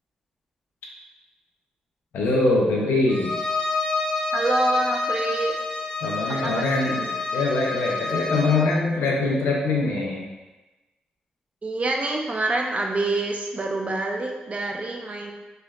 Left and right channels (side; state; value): both; normal; correlation 0.71